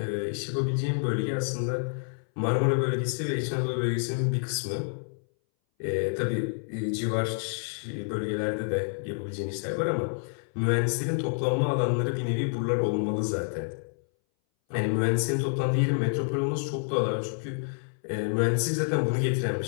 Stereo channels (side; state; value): right; silent; 59 dB below the other